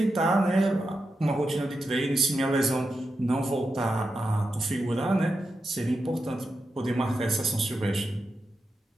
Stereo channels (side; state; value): both; normal; correlation 0.88